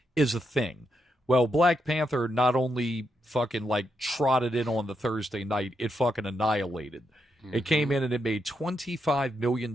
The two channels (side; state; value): both; normal; correlation 0.82